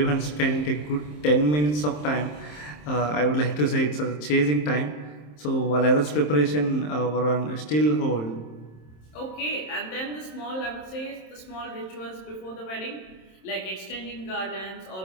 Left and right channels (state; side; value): late; right; 27 ms